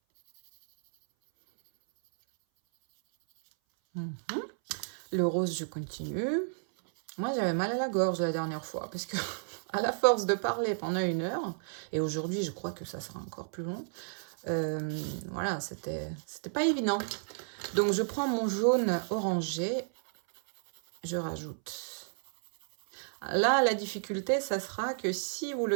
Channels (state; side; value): silent; left; 56 dB below the other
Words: Le rose, je continue. Moi, j'avais mal à la gorge la dernière fois parce que à la force de parler pendant 1 heure, et aujourd'hui, je crois que ça sera encore plus long, voilà, c'était pas évident. Donc, je prends mon jaune orangé, je rajoute. Là, la difficulté, ça sera que si vous